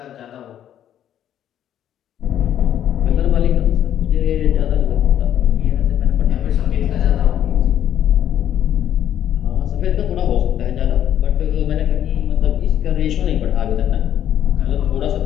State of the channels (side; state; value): right; quieter; 10.6 dB